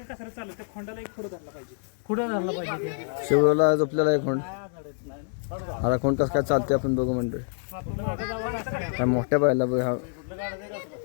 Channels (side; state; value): right; silent; 56 dB below the other